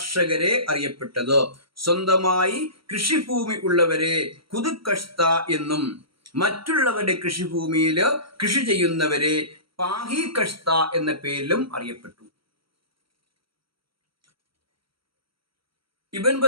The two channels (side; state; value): left; late; 0.74 ms